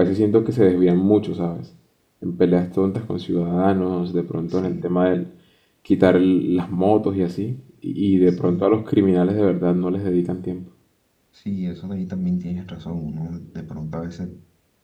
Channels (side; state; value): both; identical; correlation 1.00